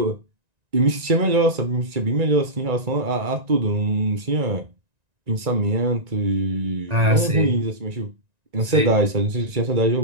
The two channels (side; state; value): left; late; 1.9 ms